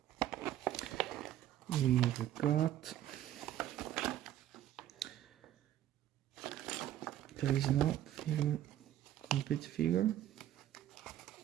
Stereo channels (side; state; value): left; quieter; 12.4 dB